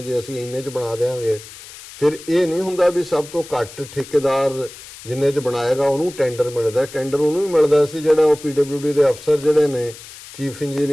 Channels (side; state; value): left; noise; hiss, 17 dB below the sound